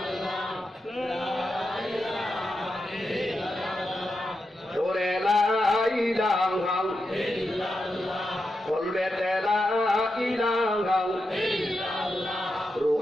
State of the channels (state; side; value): normal; both; correlation 0.87